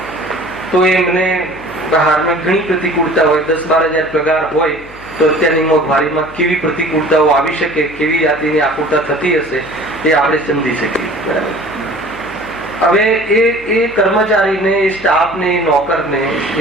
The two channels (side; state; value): left; noise; hum, 21 dB below the sound